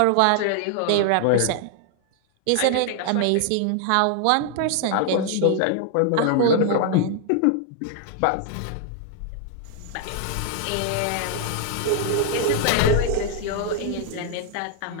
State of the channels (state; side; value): different; both; correlation 0.00